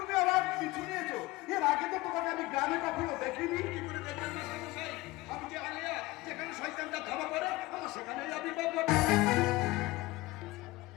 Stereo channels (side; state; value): right; quieter; 19.9 dB